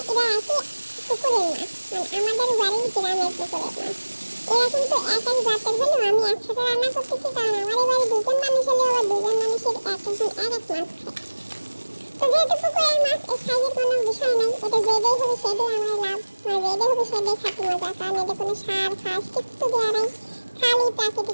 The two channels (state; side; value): inverted; both; correlation -1.00